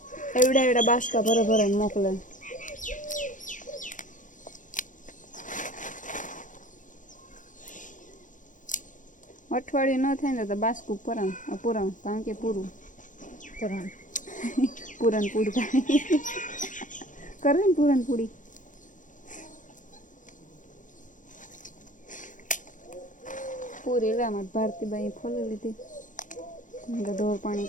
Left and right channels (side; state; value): right; late; 0.37 ms